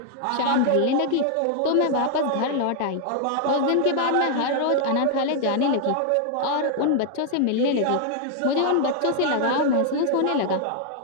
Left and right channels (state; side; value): different; both; correlation 0.00